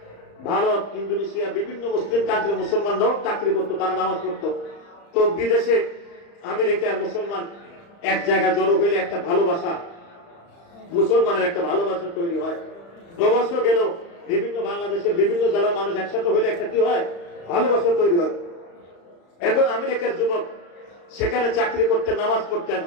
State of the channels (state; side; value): late; right; 35 ms